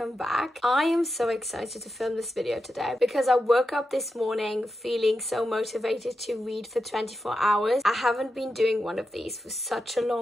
back. I am so excited to film this video today because I woke up this morning feeling so motivated to read for 24 hours. I haven't been doing one of these for such a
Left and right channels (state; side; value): normal; both; correlation 0.88